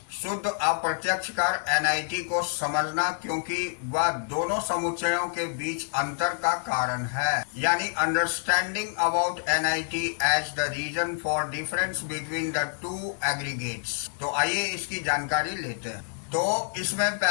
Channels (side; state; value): right; silent; digital silence